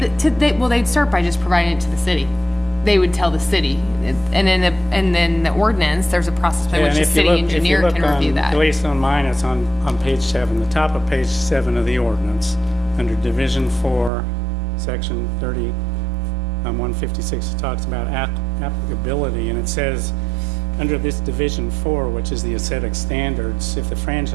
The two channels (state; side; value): drops out; left; at 14.1 s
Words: Well, they'd start by just providing it to the city. They would tell the city, and then the ordinance, there's a process by Yeah, which and the if you city look- engineer if you can look review on- that. At least on mine, it's on page 7, the top of page 7 of the ordinance, under Division 4, Section 30, 156, it talks about applicability, and it says, under this Division 4, which is the aesthetic standards, if the